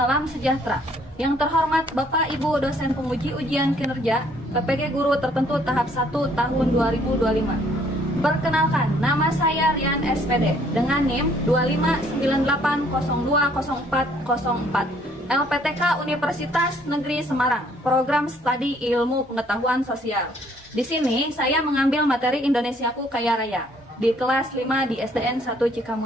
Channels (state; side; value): normal; both; correlation 0.63